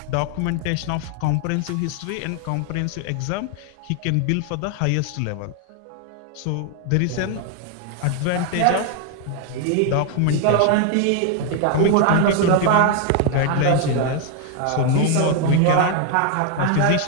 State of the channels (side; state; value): both; different; correlation 0.00